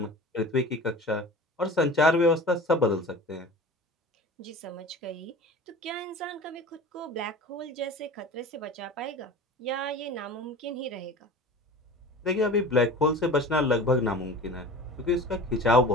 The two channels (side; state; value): both; normal; correlation 0.38